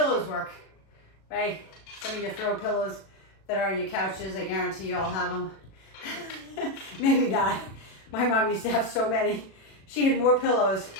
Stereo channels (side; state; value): right; late; 37 ms